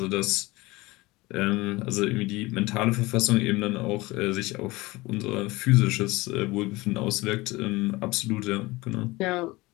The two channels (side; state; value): right; quieter; 21.4 dB